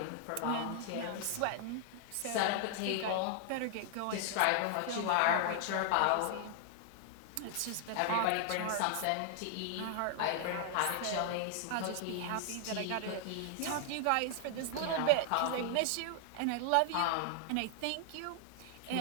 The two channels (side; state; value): both; different; correlation 0.00